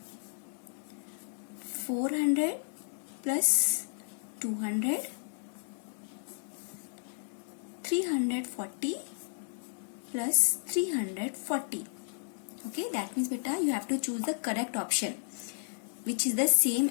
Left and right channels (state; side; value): silent; right; digital silence